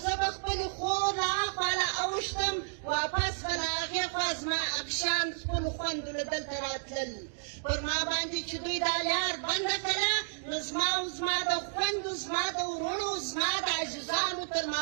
زه به خپلې خور له اخوا له اوښتم، واپس به له هغې خوا زما افشان خپلو خویندو له دلته راتلل. پر ما باندې چې دوی دا لار بنده کړه، نو زما او زما د خویندو، زما د وروڼو، زما د عزیزانو تر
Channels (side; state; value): left; silent; digital silence